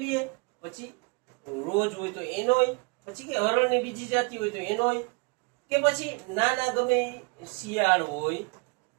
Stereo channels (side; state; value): left; quieter; 29.6 dB